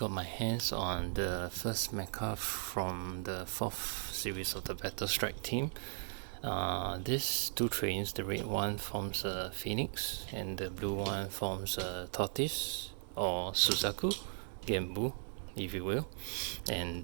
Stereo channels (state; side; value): silent; left; digital silence